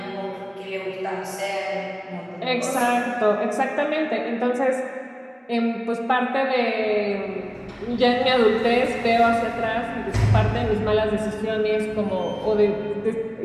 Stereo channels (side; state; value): both; identical; correlation 1.00